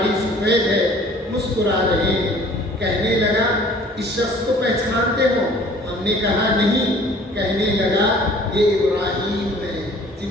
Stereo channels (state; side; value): normal; both; correlation 0.51